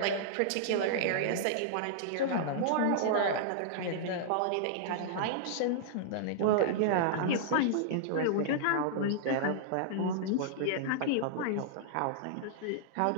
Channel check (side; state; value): both; different; correlation -0.01